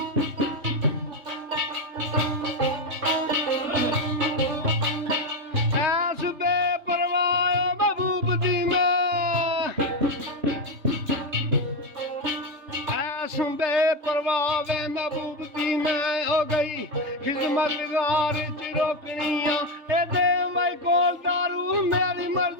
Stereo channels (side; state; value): left; late; 3.3 ms